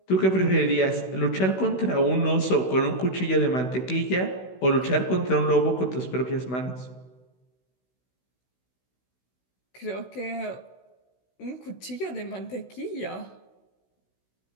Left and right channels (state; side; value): late; right; 16 ms